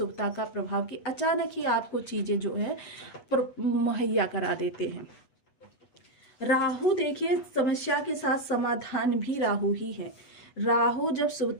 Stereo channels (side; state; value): right; late; 8.1 ms